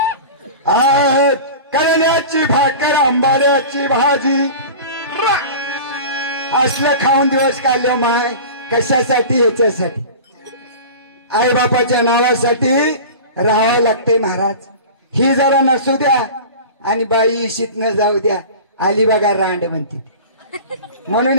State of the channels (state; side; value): inverted; both; correlation -0.35